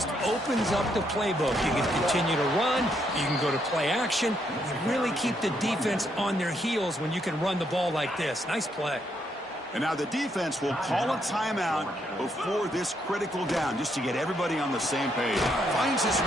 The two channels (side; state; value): both; normal; correlation 0.75